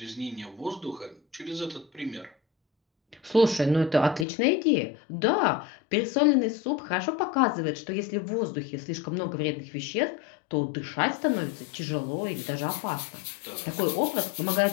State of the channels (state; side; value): drops out; right; at 4.2 s